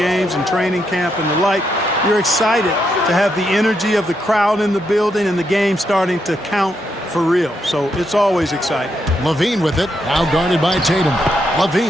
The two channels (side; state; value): both; normal; correlation 0.80